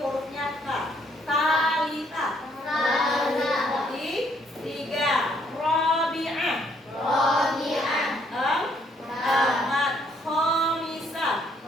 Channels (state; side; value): normal; both; correlation 0.68